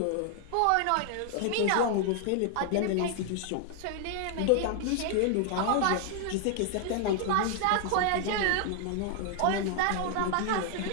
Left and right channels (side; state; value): both; different; correlation 0.00